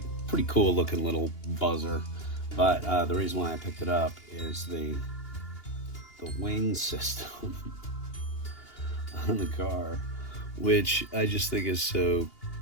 cool looking little buzzer, but the reason why I picked it up is the wing system on the car, which I just think is so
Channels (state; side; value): late; right; 2.8 ms